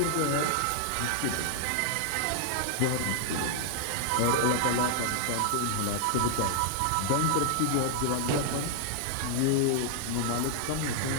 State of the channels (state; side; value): different; both; correlation -0.01